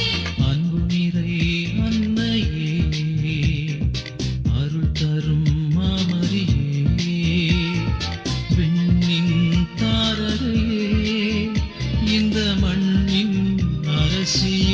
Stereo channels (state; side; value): identical; both; correlation 1.00